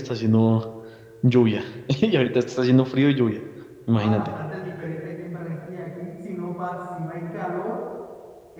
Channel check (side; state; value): both; identical; correlation 1.00